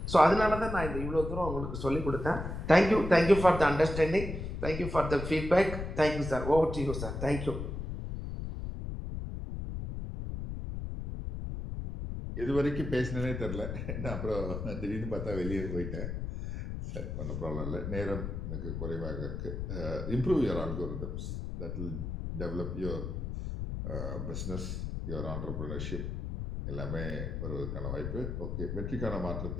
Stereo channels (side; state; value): left; noise; rumble, 5 dB below the sound